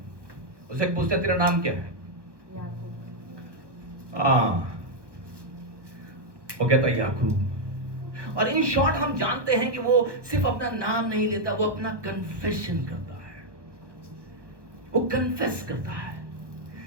उसे पूछते तेरा नाम क्या है? वो कहता है याकूब। और इन शॉर्ट हम जानते हैं कि वो सिर्फ अपना नाम नहीं लेता, वो अपना कन्फेशन करता है, वो कन्फेस करता है।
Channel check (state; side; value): late; left; 1.0 ms